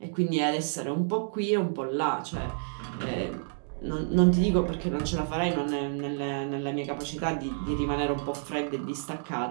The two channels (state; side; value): silent; left; digital silence